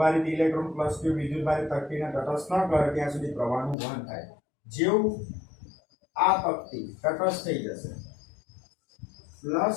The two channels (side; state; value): right; drops out; at 3.8 s